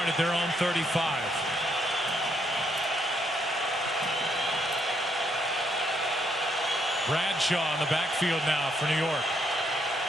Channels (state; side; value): normal; both; correlation 0.74